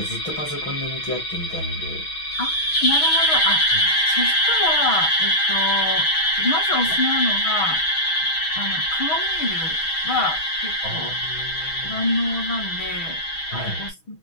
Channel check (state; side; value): late; right; 6.3 ms